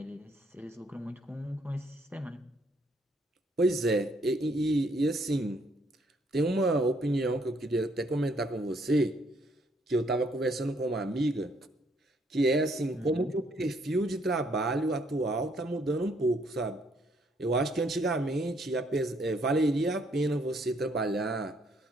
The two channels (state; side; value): normal; both; correlation 0.68